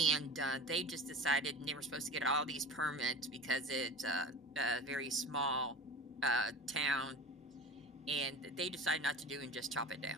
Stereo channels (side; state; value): both; normal; correlation 0.33